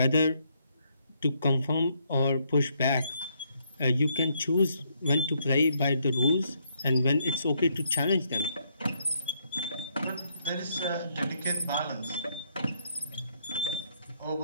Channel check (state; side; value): inverted; both; correlation -0.73